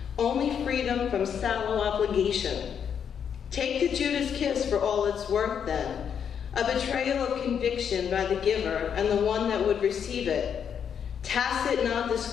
only freedom from sallow obligation. Take the Judas kiss for all it's worth then, a betrayal of conviction by the giver and the one that would receive it. Tacit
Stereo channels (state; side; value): quieter; right; 7.8 dB